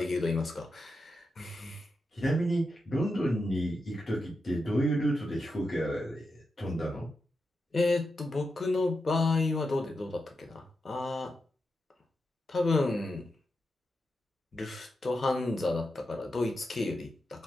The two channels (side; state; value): both; normal; correlation 0.88